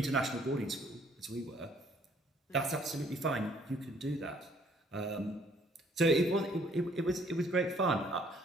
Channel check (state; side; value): normal; both; correlation 0.62